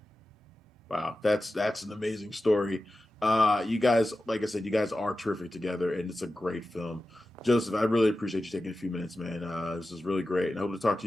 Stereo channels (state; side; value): normal; both; correlation 0.93